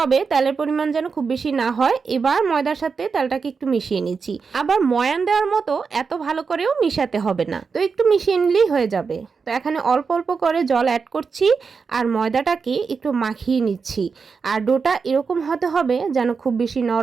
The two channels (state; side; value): quieter; left; 5.3 dB